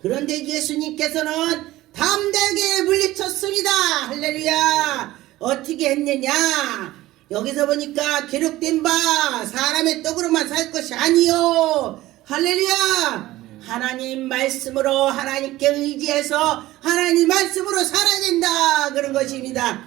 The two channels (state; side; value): quieter; left; 16.7 dB